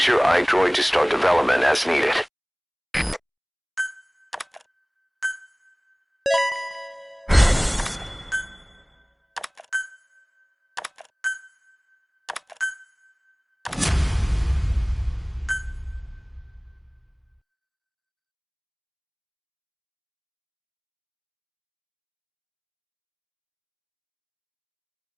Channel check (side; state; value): both; identical; correlation 1.00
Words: your iDroid to start development as needed.